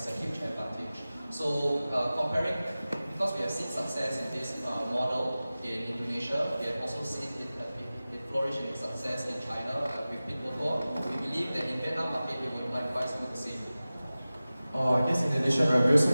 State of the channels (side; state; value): both; inverted; correlation -0.96